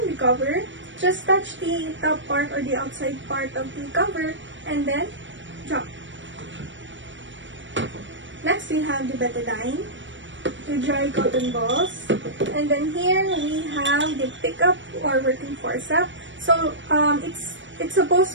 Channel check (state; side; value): late; left; 0.54 ms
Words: the cover, just touch the top part or the outside part of the cover and then drop. Next, we have the betadine, the dry cotton balls, and then here we have the pickup or working forceps. So it's